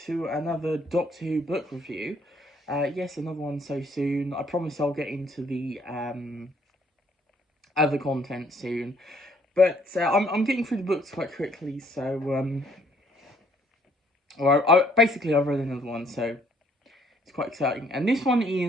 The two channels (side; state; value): both; normal; correlation 0.63